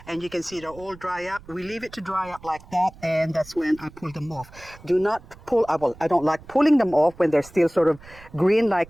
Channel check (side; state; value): right; noise; rumble, 21 dB below the sound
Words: and you can see they're all dry up. We leave it to dry up like that, and that's when I pull them off. Do not pull, well, I don't like pulling them off when they're still sort of green